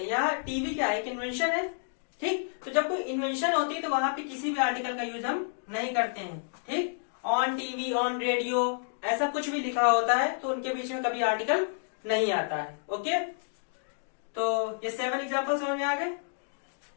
यहाँ टीवी क्या है, एक इन्वेंशन है, ठीक। तो जब कोई इन्वेंशन होती है तो वहां पे किसी भी आर्टिकल का यूज हम नहीं करते हैं, ठीक। ऑन टीवी, ऑन रेडियो, ऐसा कुछ भी लिखा होता है तो उनके बीच में कभी आर्टिकल नहीं आता है। ओके, तो ये 7 एग्जाम्पल समझ में आ गए।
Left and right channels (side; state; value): right; silent; digital silence